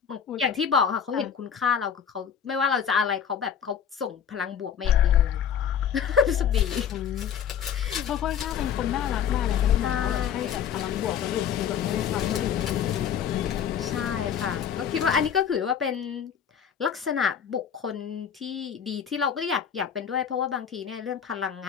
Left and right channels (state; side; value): quieter; right; 8.2 dB